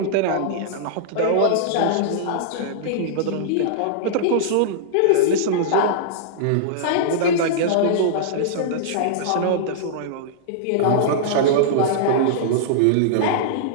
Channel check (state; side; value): different; both; correlation -0.02